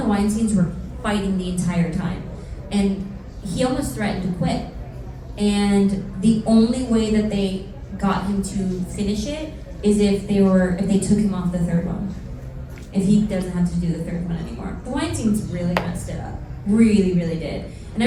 the Weinsteins were fighting the entire time. And he almost threatened to quit. And the only way that they got him to finish it is if they took him off the third one. If he doesn't have to do the third one anymore. The Weinsteins really messed it up. Really, really did. And I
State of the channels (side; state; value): both; identical; correlation 1.00